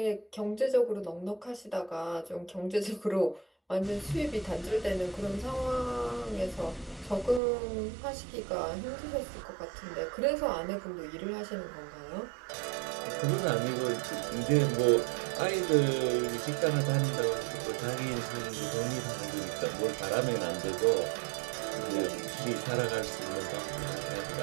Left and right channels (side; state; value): left; drops out; at 7.4 s